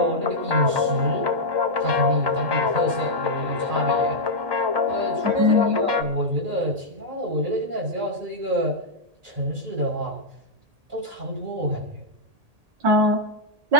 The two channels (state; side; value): late; left; 1.8 ms